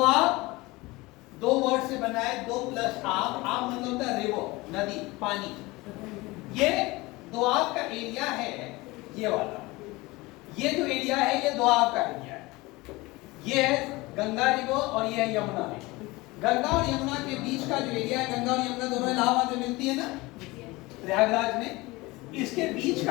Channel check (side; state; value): right; quieter; 22.0 dB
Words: दो वर्ड से बना है, दो प्लस आब, आब मतलब होता है रिवर, नदी, पानी। ये दोआब का एरिया है, ये वाला, ये जो एरिया है ये दोआब का एरिया है। ये है गंगा रिवर और ये है यमुना रिवर। गंगा और यमुना के बीच का जो एरिया है, गंगा और यमुना दोनों इलाहाबाद में मिलती है ना, प्रयागराज में, इसके बीच